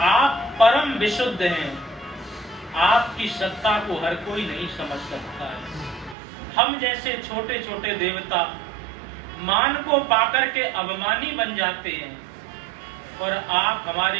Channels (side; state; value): left; drops out; at 6.2 s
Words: आप परम विशुद्ध हैं, आपकी सत्ता को हर कोई नहीं समझ सकता है। हम जैसे छोटे छोटे देवता मान को पाकर के अभिमानी बन जाते हैं और आप